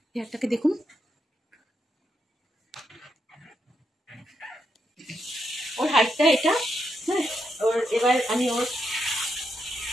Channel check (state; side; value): normal; both; correlation 0.82